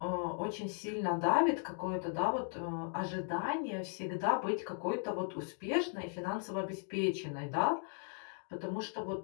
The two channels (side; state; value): right; silent; 53 dB below the other